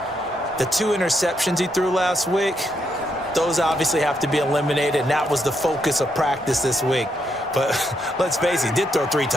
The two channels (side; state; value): both; normal; correlation 0.78